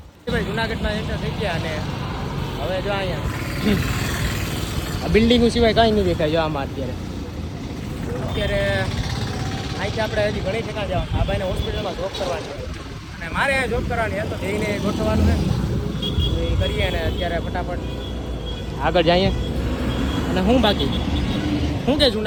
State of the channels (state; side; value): identical; both; correlation 1.00